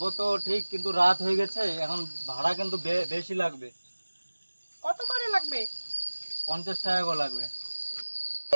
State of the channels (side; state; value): both; inverted; correlation -1.00